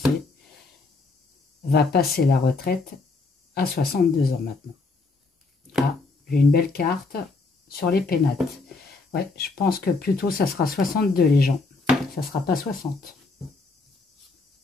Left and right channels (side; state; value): right; quieter; 3.8 dB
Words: va passer la retraite à 62 ans maintenant? Ah, j'ai une belle carte sur les pénates. Ouais, je pense que plutôt ça sera 62 les gens. Ça ne sera pas 60.